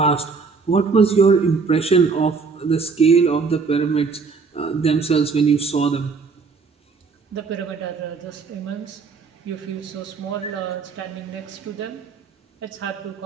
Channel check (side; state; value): left; quieter; 4.9 dB